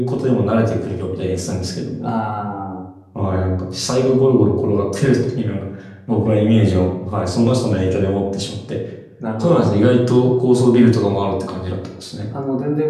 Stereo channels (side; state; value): both; identical; correlation 1.00